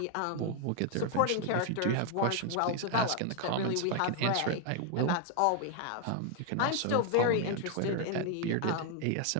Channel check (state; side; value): different; both; correlation 0.00